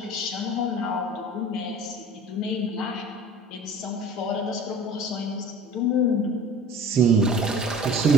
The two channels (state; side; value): normal; both; correlation 0.42